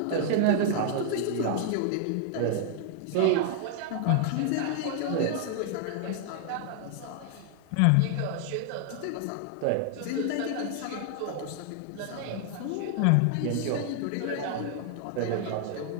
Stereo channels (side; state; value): both; different; correlation 0.00